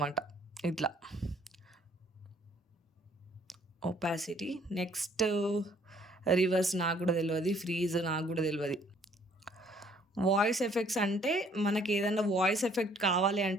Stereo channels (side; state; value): both; normal; correlation 0.61